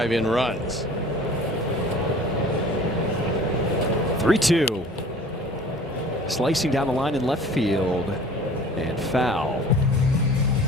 in runs. 3-2. Slicing down the line in left field, and foul.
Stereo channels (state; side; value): normal; both; correlation 0.46